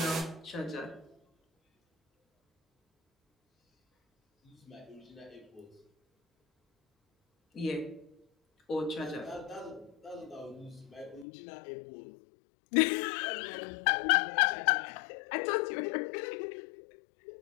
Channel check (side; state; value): right; drops out; at 11.2 s